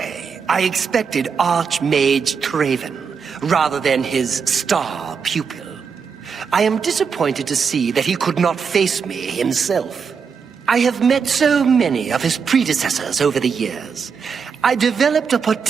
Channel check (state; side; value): quieter; left; 6.1 dB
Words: I expected Archmage Traven, rather than his star pupil. I am disappointed to see that he could not face me himself. I have met so many of his predecessors over the years. I developed a